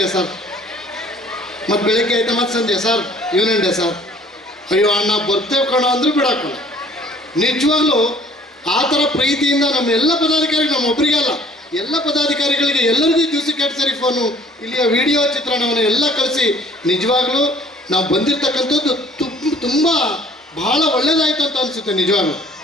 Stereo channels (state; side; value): normal; both; correlation 0.55